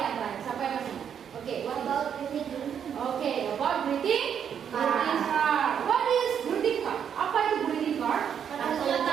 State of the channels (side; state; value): left; quieter; 8.2 dB